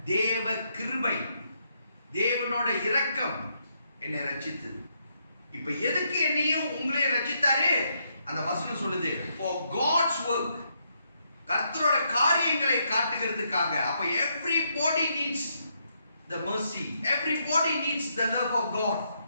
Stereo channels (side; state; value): both; inverted; correlation -0.77